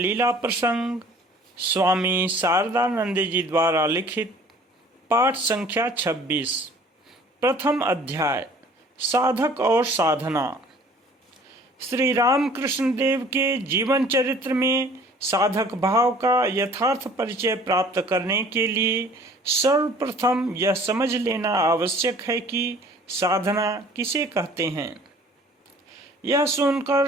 प्रसंग स्वामी शारदानंद जी द्वारा लिखित पाठ संख्या 26। प्रथम अध्याय साधक और साधना। श्री रामकृष्ण देव के जीवन चरित्र में साधक भाव का यथार्थ परिचय प्राप्त करने के लिए सर्वप्रथम यह समझ लेना आवश्यक है कि साधना किसे कहते हैं। यह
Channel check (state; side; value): normal; both; correlation 0.51